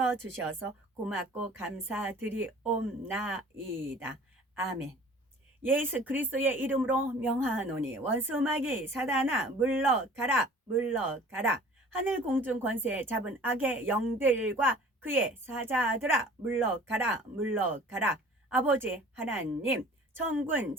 주셔서 고맙고 감사드리옵나이다. 아멘. 예수 그리스도의 이름으로 명하노니 원수마귀 사단아 물러가라, 물러가라. 하늘 공중 권세 잡은 악의 영들과 그의 사자들아 물러가라, 물러가라. 아버지 하나님, 천군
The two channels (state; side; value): normal; both; correlation 0.47